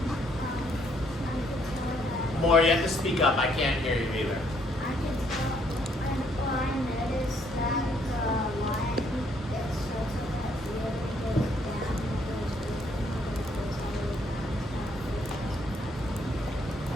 More, you have to speak up. I can't hear you either.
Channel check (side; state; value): both; normal; correlation 0.68